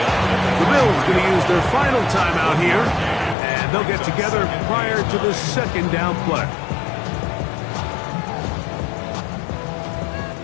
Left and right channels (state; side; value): drops out; right; at 3.4 s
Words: The Bills going to use their final timeout here. And they'll get together prior to the second down play.